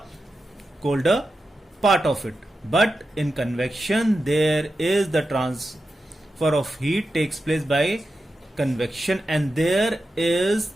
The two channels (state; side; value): normal; both; correlation 0.90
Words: colder part of it. But in convection, there is the transfer of heat takes place by convection, and there is